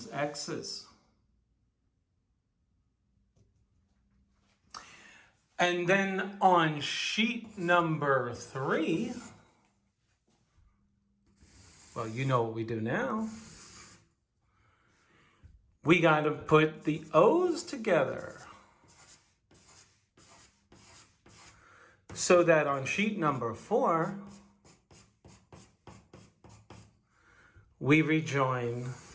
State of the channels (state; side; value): identical; both; correlation 1.00